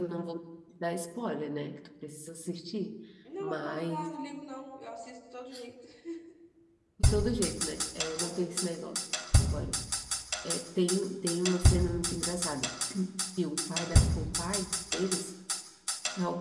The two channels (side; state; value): both; identical; correlation 1.00